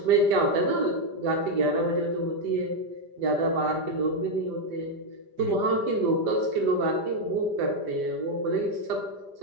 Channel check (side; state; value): left; late; 5.1 ms